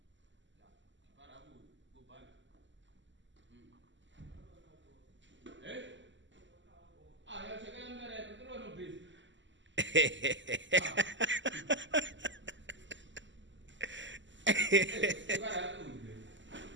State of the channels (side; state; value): left; late; 0.54 ms